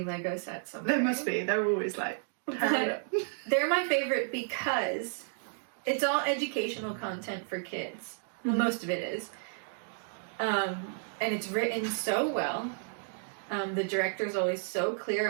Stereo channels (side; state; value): left; silent; digital silence